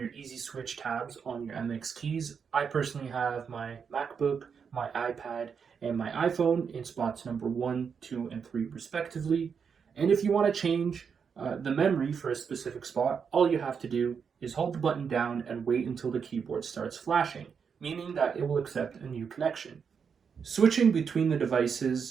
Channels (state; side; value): quieter; left; 6.5 dB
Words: easy switch tabs on your MX keys. I personally have my MacBook, my iPad, and my iPhone in spots number 1, 2, and 3 respectively. And if you want to change the memory for a specific spot, all you have to do is hold the button down and wait until the keyboard starts flashing, meaning that it will accept a new connection. Switching between the